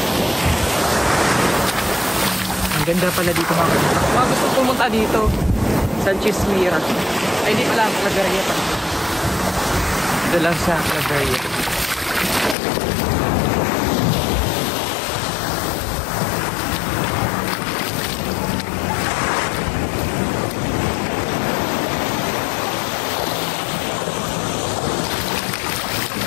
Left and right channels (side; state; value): right; drops out; at 12.6 s